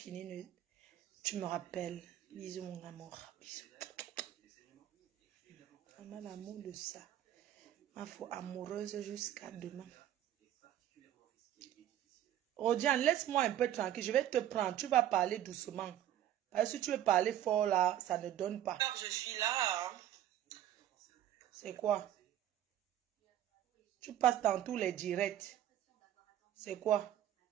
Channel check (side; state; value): left; quieter; 11.9 dB